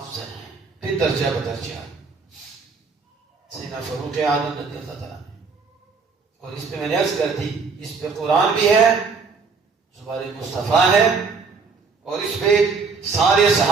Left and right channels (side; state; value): left; quieter; 4.9 dB